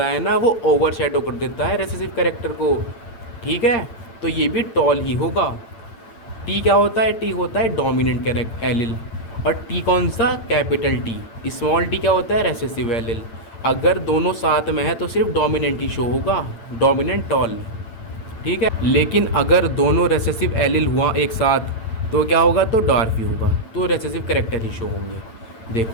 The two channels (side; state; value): right; late; 8.9 ms